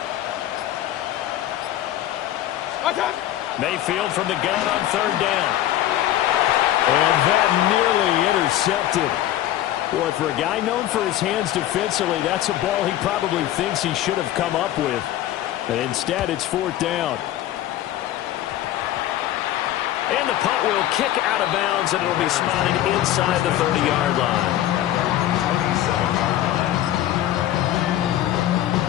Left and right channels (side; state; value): right; quieter; 13.1 dB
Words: Mayfield from the gun on 3rd down. And that nearly intercepted. Boy, for a guy known for his hands defensively, that's a ball he probably thinks he should have come up with. And instead, it's 4th down. And the punt will kick out of bounds, and it'll be spotted inside the 30-yard line.